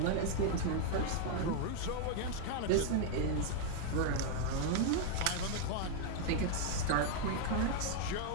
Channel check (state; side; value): different; both; correlation 0.00